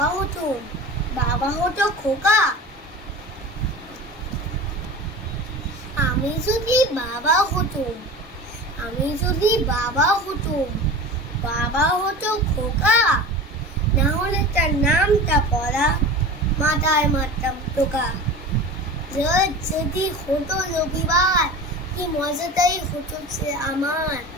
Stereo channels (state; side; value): normal; both; correlation 0.34